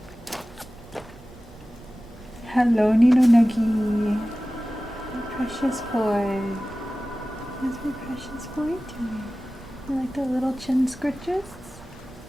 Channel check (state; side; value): noise; right; rumble, 21 dB below the sound